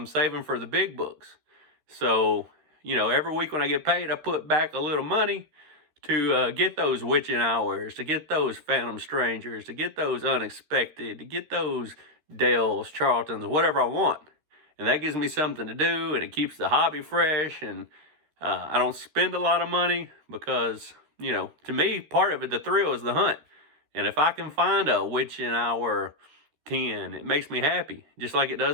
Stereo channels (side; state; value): left; late; 13 ms